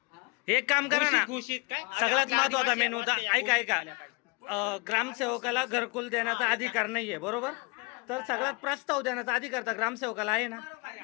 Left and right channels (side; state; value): right; quieter; 30.0 dB